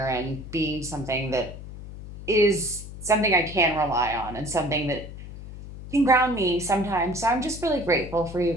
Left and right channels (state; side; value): noise; left; hum, 13 dB below the sound